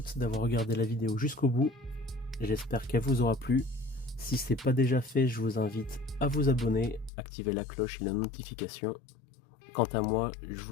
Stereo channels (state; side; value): drops out; right; at 7.1 s